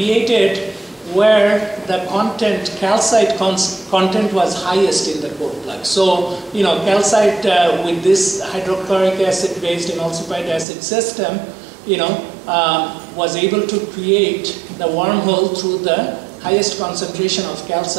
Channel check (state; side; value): drops out; left; at 10.7 s